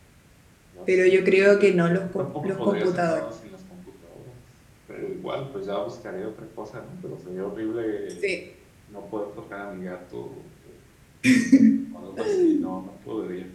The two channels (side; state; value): both; identical; correlation 1.00